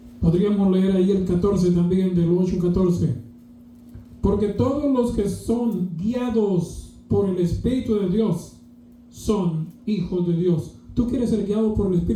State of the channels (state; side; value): identical; both; correlation 1.00